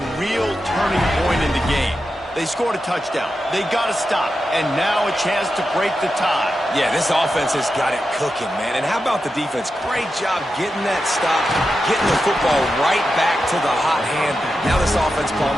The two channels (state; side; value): normal; both; correlation 0.89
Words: real turning point in the game. They scored a touchdown. They got to stop. And now a chance to break the tie. Yeah, this offense has got it cooking, man. And how about the defense? Great job getting that stop, getting the football right back to the hot hand. Now this offense,